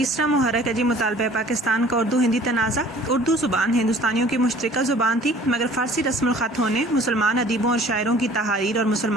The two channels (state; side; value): normal; both; correlation 0.51